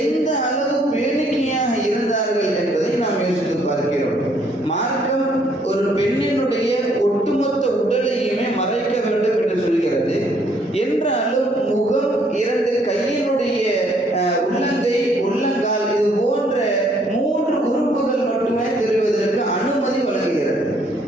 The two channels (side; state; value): both; normal; correlation 0.66